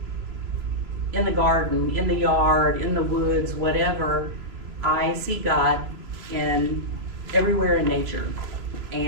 in the garden, in the yard, in the woods, whatever, I see God everywhere in nature,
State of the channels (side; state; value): left; late; 3.0 ms